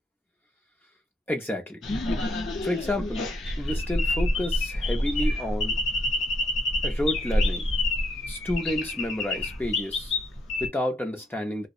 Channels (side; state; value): both; normal; correlation 0.75